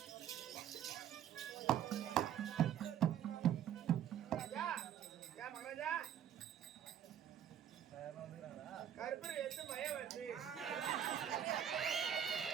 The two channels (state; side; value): quieter; left; 9.8 dB